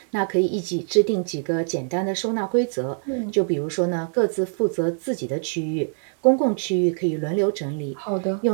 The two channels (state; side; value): silent; left; digital silence